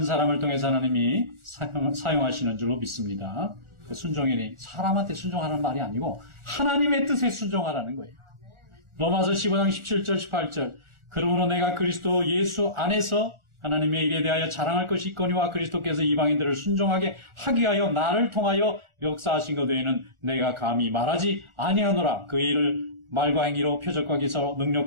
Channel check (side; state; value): left; late; 1.4 ms